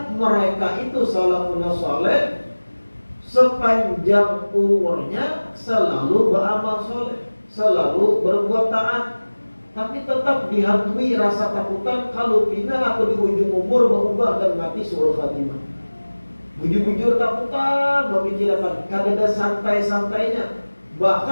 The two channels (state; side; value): inverted; both; correlation -1.00